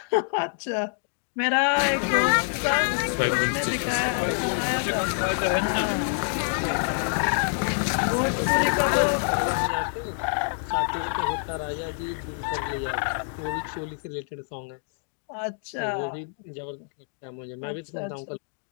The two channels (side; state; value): right; silent; digital silence